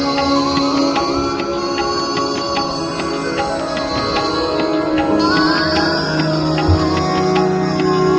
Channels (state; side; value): identical; both; correlation 1.00